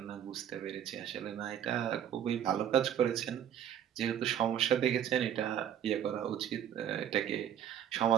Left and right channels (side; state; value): left; quieter; 9.8 dB